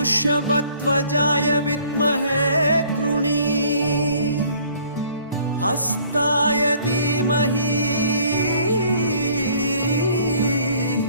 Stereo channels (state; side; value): inverted; both; correlation -0.57